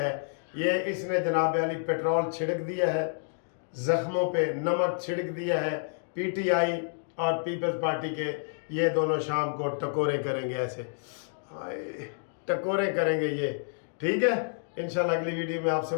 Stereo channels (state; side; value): silent; right; digital silence